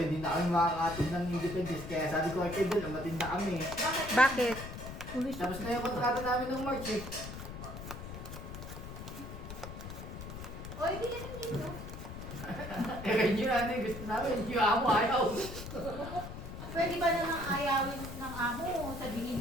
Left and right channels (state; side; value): noise; left; rumble, 10 dB below the sound